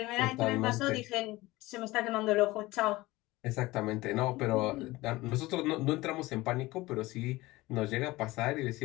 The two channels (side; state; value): right; quieter; 19.8 dB